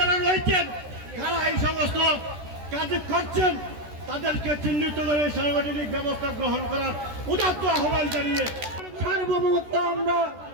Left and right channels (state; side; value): late; left; 13 ms